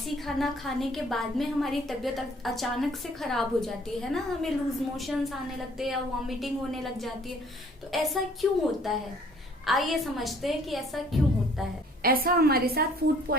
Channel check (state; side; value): normal; both; correlation 0.58